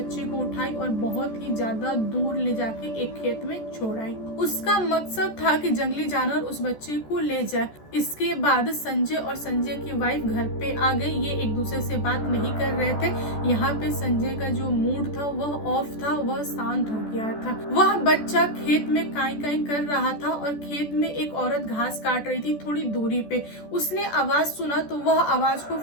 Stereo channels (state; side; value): late; right; 14 ms